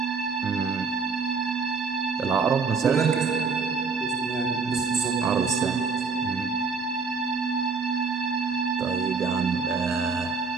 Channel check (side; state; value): left; quieter; 4.9 dB